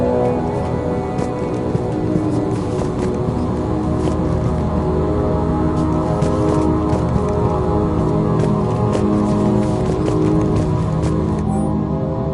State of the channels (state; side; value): identical; both; correlation 1.00